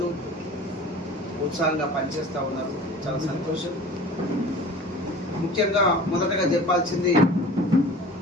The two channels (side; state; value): both; normal; correlation 0.41